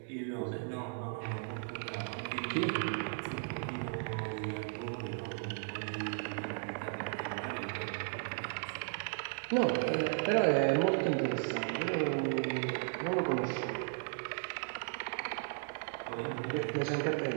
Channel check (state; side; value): silent; left; digital silence